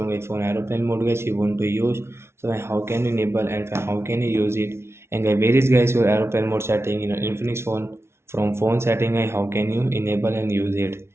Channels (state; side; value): late; left; 0.12 ms